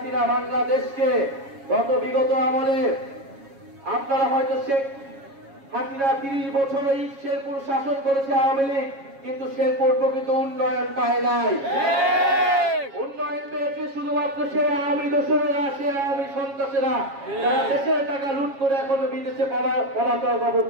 বাংলাদেশকে বিগত আমলে, আপনারা হয়তো শেখ হাসিনা 30 বছর এই শেরপুর শাসন করেছে আওয়ামী লীগ, কিন্তু শেরপুর প্রকৃত উন্নয়ন পায় নাই। উন্নয়ন পেয়েছে শুধুমাত্র সে আওয়ামী দোসরেরা, সে আওয়ামী সন্ত্রাসীরা, যারা দেশের টাকা লুট করে এখনো বিদেশে পলাতক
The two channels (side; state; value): left; late; 7.3 ms